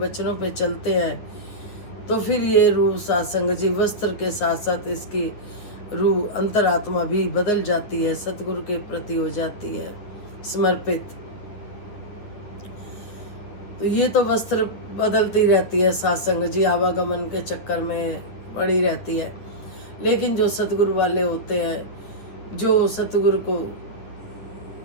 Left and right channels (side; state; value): right; late; 9.4 ms